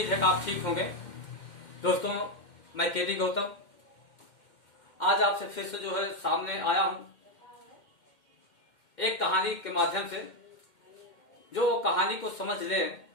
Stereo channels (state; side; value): late; right; 2.1 ms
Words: है कि आप ठीक होंगे। दोस्तों, मैं केडी गौतम आज आपसे फिर से जो है सामने आया हूं एक कहानी के माध्यम से। जो कहानी को समझ ले